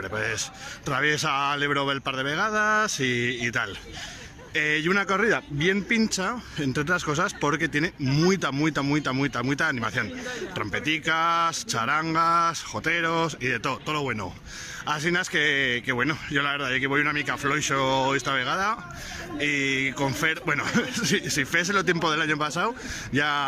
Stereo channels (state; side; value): identical; both; correlation 1.00